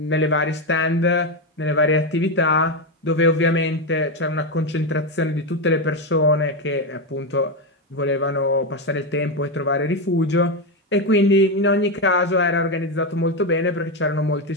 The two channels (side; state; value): both; normal; correlation 0.09